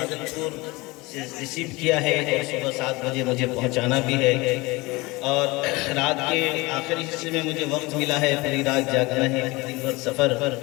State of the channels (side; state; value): right; quieter; 23.0 dB